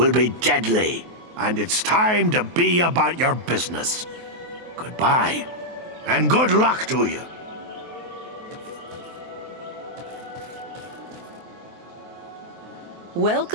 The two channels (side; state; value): left; late; 23 ms